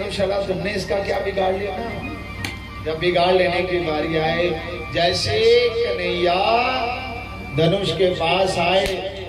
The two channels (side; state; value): both; identical; correlation 1.00